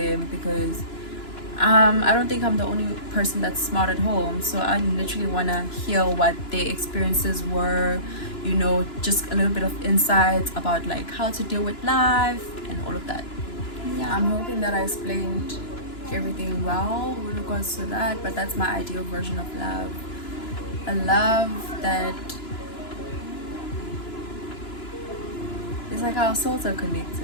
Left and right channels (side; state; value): right; late; 2.9 ms